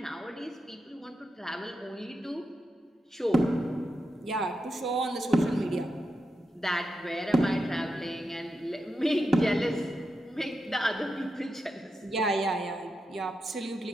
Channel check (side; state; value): both; normal; correlation 0.87